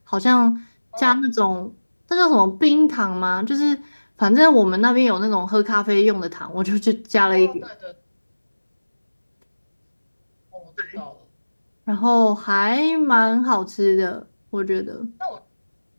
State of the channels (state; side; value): inverted; both; correlation -1.00